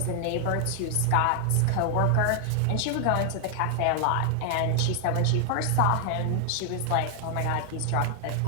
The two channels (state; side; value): different; both; correlation 0.00